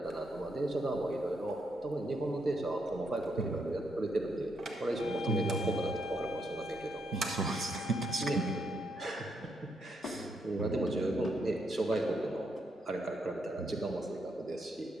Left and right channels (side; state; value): both; normal; correlation 0.78